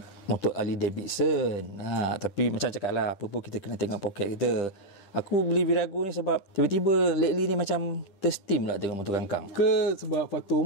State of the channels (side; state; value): right; late; 10 ms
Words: Harley Davidson. Tapi macam cakap lah, apa pun kita kena tengok poket kita. Aku beli Virago ni sebab tiba-tiba lately ni macam tersteam lah tengok motor kangkang. Ke sebab faktor